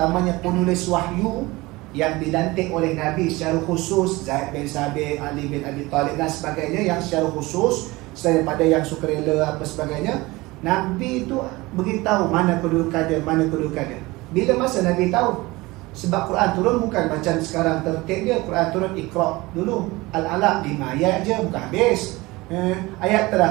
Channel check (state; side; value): quieter; left; 21.5 dB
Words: penulis wahyu yang dilantik oleh Nabi secara khusus, Zaid bin Sabit, Ali bin Abi Talib dan sebagainya, yang secara khusus selain daripada yang sukarela apa sebagainya, Nabi itu beritahu mana kedudukan dia, mana kedudukan dia. Bila masa Nabi tahu? Sebab Quran turun bukan macam sekarang tertib dia. Quran turun Iqra dulu, Al-Alaq 5 ayat je, bukan habis. Ayat